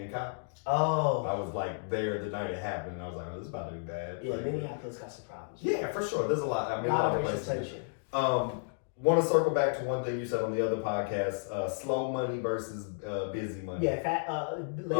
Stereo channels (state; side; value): silent; right; digital silence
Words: cop. Oh. I was there the night it happened, and I was like, "Oh, this is about to be bad." Yeah, Minneapolis got some problems. Yeah, for sure. There's a lot. I mean, a lot of of racial places. tension. Want to circle back to one thing you said on the other podcast: slow money versus busy money. Yeah,